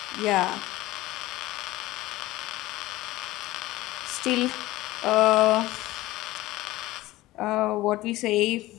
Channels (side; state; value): right; quieter; 17.8 dB